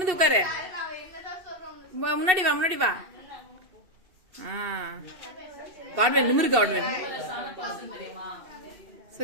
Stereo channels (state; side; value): late; left; 2.7 ms